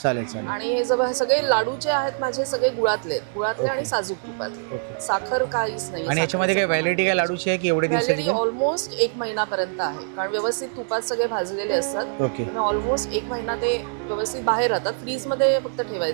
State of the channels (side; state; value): left; silent; digital silence